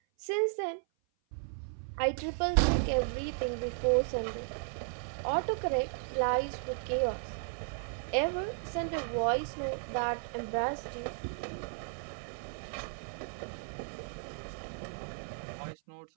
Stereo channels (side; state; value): left; silent; 55 dB below the other